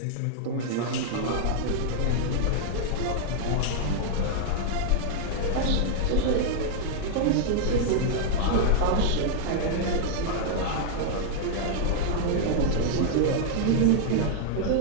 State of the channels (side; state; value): both; different; correlation -0.01